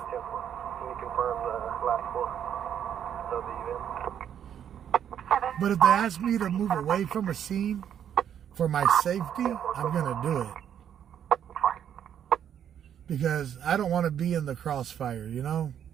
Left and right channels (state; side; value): quieter; left; 9.2 dB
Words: Can you confirm the last four of the event? But if they ask me to move away from a scene for my safety, I'm going to do it. Because I don't want to be in the crossfire,